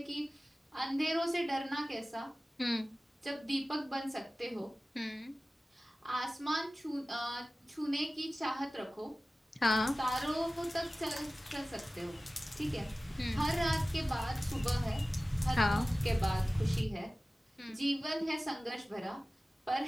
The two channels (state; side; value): normal; both; correlation 0.97